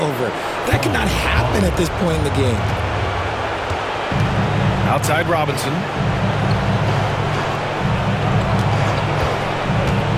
That could not happen at this point in the game. Outside Robinson.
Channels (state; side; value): identical; both; correlation 1.00